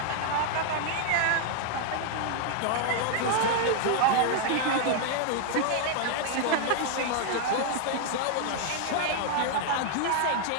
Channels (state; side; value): different; both; correlation 0.00